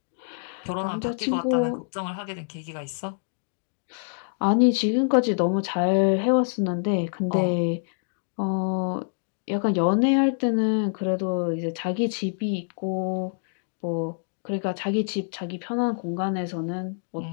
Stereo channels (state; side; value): silent; right; digital silence